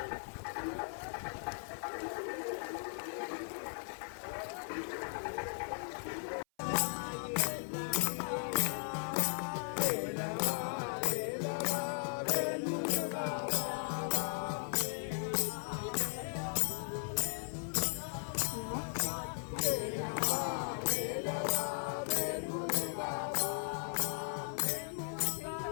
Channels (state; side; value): silent; right; 53 dB below the other